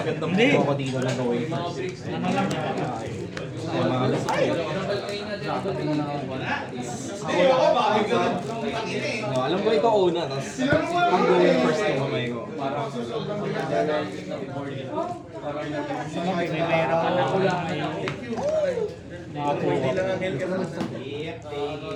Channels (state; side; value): identical; both; correlation 1.00